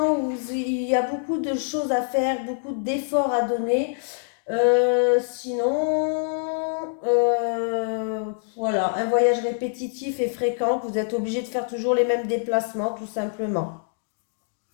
où il y a beaucoup de choses à faire, beaucoup d'efforts à donner. Sinon, voilà, un voyage répétitif et fréquent, vous êtes obligé de faire toujours les mêmes déplacements, tout simplement.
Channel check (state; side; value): silent; right; digital silence